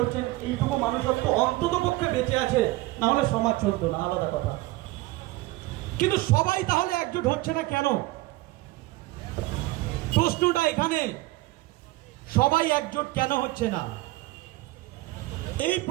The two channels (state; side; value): quieter; left; 19.3 dB